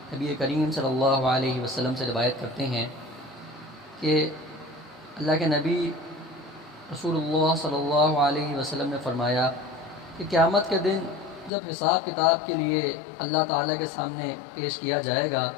نبی کریم صلی اللہ علیہ وسلم سے روایت کرتے ہیں کہ اللہ کے نبی رسول اللہ صلی اللہ علیہ وسلم نے فرمایا کہ قیامت کے دن جب حساب کتاب کے لیے اللہ تعالیٰ کے سامنے پیش کیا جائے گا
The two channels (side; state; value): right; drops out; at 11.5 s